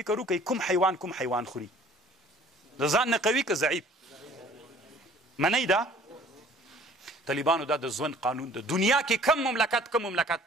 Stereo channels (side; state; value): both; normal; correlation 0.52